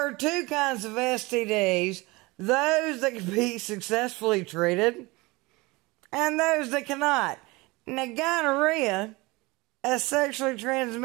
are two kinds of STDs. Those that can be successfully treated and those that cannot. Now, gonorrhea, a sexually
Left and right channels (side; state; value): left; quieter; 23.3 dB